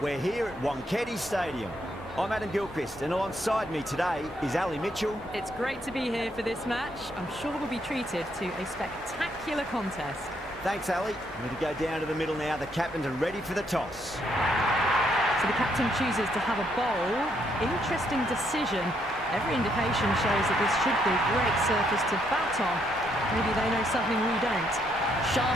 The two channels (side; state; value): both; normal; correlation 0.73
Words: We're here at Wankhede Stadium. I'm Adam Gilchrist, and alongside me today is Ali Mitchell. It's great to be here for this match. I'm sure we'll be treated to a spectacular contest. Thanks, Ali. We're going to go down to the middle now. The captains are ready for the toss. So the captain chooses to have a bowl. Interesting decision. Every indication shows that this should be a great surface to bat on. Maybe they know something we don't.